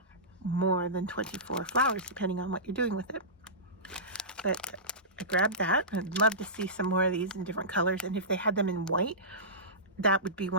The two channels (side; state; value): both; normal; correlation -0.20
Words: more than 24 flowers, depending on what you're doing with it. But I grabbed that. I'd love to see some more of these in different colors, and if they had them in white, that would be